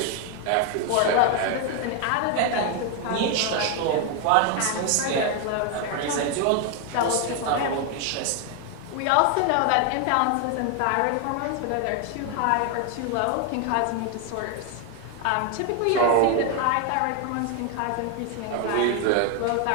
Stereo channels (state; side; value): different; both; correlation 0.01